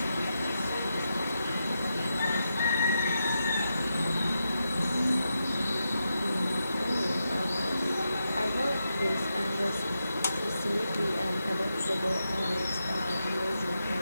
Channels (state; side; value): inverted; both; correlation -0.86